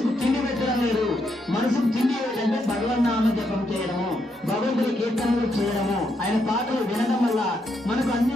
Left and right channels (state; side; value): normal; both; correlation 0.79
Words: తిండి పెట్టడం లేదు. మనసుకు తిండి ఏంటంటే భగవన్నామ జపం చేయడము, భగవంతుడి కీర్తనలు చేయడము, ఆయన పాటలు వినడం వల్ల మనకు అన్ని